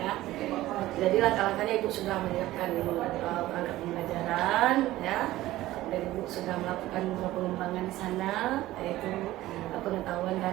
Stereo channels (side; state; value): left; quieter; 16.1 dB